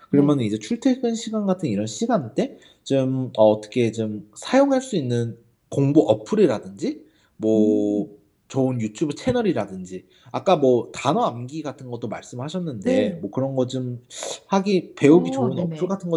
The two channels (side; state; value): both; identical; correlation 1.00